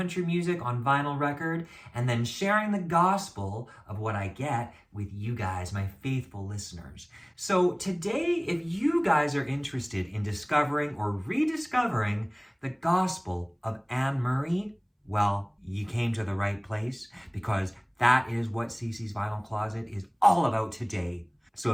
music on vinyl record and then sharing the gospel of what I get with you guys, my faithful listeners. So today, if you guys are interested in discovering or rediscovering the gospel of Anne Murray, well, you came to the right place because that is what CC's Vinyl Closet is all about today. So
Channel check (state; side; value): identical; both; correlation 1.00